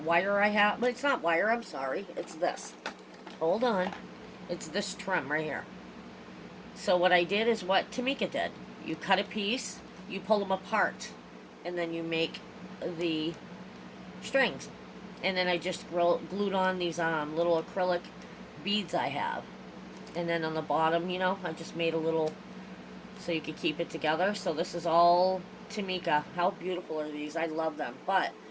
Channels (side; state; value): both; identical; correlation 1.00